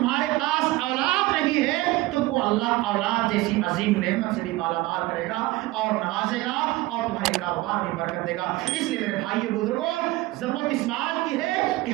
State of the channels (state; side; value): quieter; left; 18.9 dB